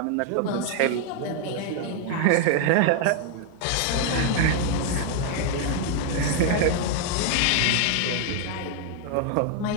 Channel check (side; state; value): both; different; correlation 0.00